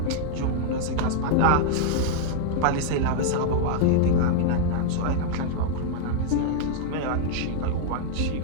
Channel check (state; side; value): different; both; correlation -0.01